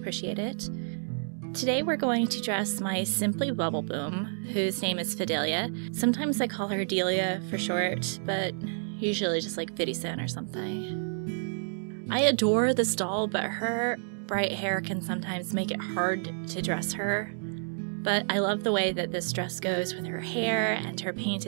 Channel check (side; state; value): left; silent; digital silence